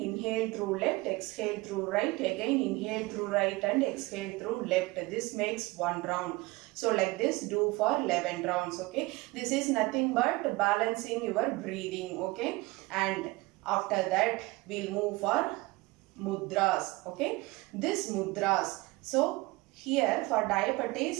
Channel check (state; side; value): quieter; left; 22.5 dB